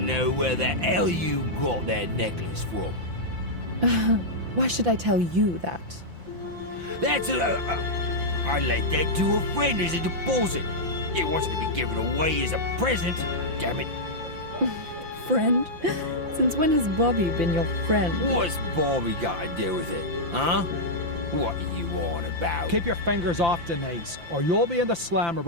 know where the hell you got that necklace from. Why should I tell you that? That's I let that to a friend as a deposit. It wasn't to be given away as a present. Damn it. Friend? Since when has Bobby been your friend? What's Bobby got to do with it, huh? What are you on about? Keep your fingers off Denise, or you'll be in the slammer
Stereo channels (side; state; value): left; late; 5.9 ms